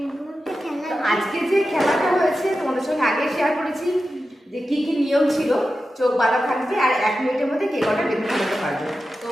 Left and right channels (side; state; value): both; normal; correlation 0.92